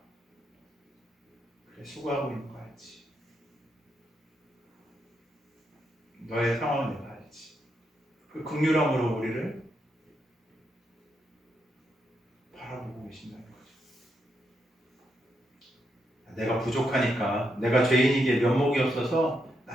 그래 수고하고 있는 거 알지. 너의 상황은 내가 알지. 그 긍휼함으로 우리를 바라보고 계신다는 거죠. 내가 부족하니까, 내가 죄인이기에 면목이 없어서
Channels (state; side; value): normal; both; correlation 0.81